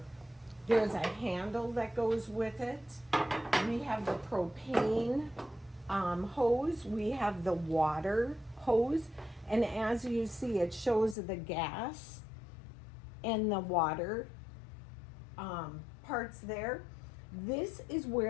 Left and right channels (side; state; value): right; drops out; at 11.2 s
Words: a handle that goes with it. We have the propane hose. We have the water hose. And as you see, it shows the gas and the water parts there. This is